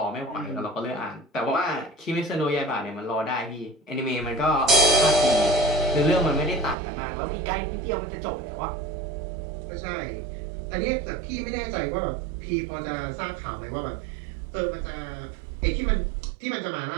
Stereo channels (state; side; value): drops out; left; at 6.8 s